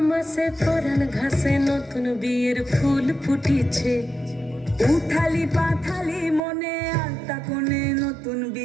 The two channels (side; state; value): left; drops out; at 6.4 s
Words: মাসে পরাণ ঘাসে নতুন বিয়ের ফুল ফুটিছে। উথালি পাথালি মনে আলতা কোণে নতুন